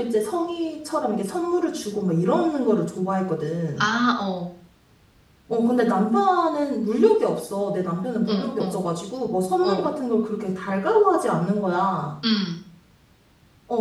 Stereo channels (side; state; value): both; identical; correlation 1.00